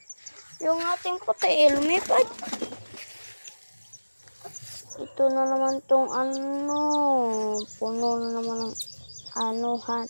Yung ating puti, lumipad. Ito na naman tong puno na naman ng anuhan.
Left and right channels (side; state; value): both; inverted; correlation -1.00